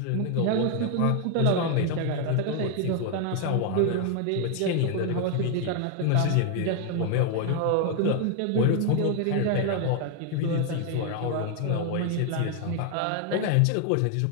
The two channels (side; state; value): both; different; correlation 0.00